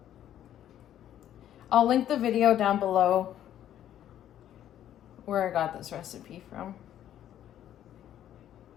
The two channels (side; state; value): right; quieter; 11.2 dB